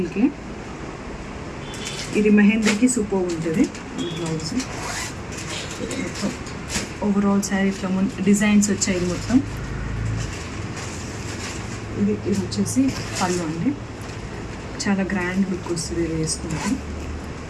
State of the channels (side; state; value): both; identical; correlation 1.00